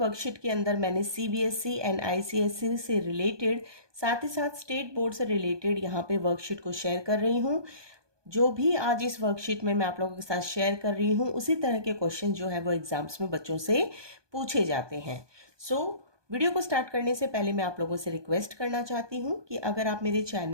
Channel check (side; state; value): left; late; 1.2 ms